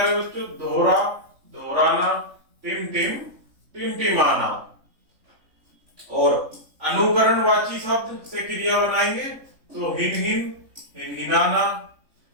बच्चों दोहरा दोहराना। टिम टिमटिमाना। और अनुकरणवाची शब्द से क्रिया बनाएंगे तो हिनहिनाना।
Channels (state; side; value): late; left; 3.5 ms